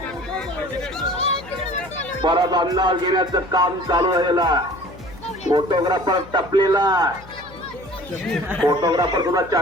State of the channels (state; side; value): noise; left; hum, 20 dB below the sound